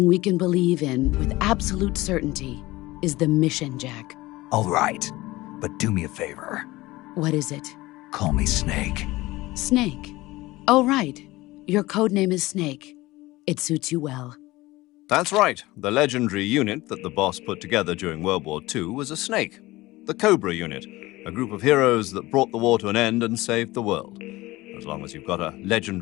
we can believe in with absolute certainty is the mission, Jack. All right, but do me a favor. What is it? Call me Snake. Snake? Oh, right. Your code name is Snake. It suits you well. That's right. The legendary unit that the boss put together during World War II was a snake. The Cobra unit, a group of heroes that brought the war to an end and saved the world. As long as you've got a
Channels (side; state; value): right; quieter; 19.3 dB